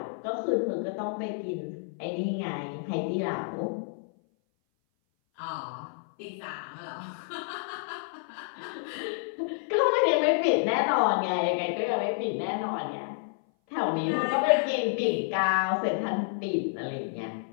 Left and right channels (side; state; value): right; silent; 57 dB below the other